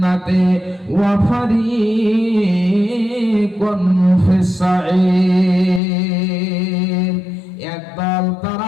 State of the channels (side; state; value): right; drops out; at 5.8 s